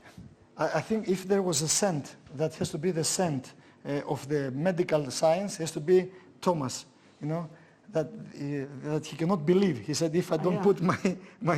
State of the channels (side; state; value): both; identical; correlation 1.00